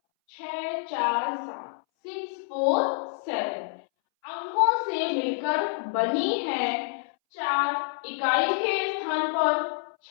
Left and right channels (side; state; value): right; silent; 60 dB below the other